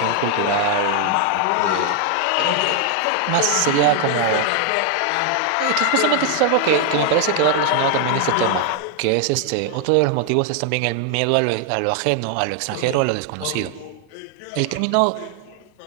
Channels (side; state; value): both; different; correlation 0.00